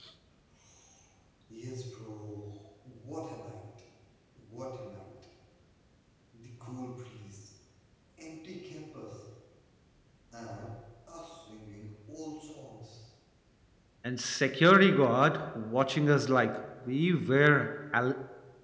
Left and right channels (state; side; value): identical; both; correlation 1.00